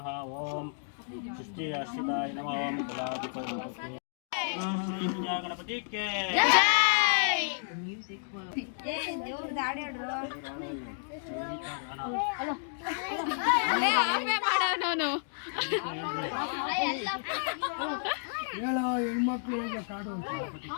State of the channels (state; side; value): silent; right; digital silence